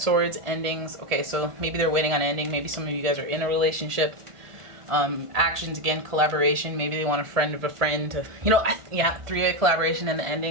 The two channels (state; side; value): late; left; 1.5 ms